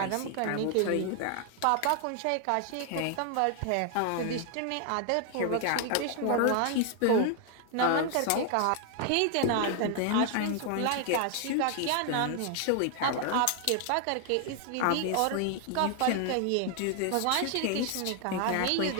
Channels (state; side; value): different; both; correlation 0.00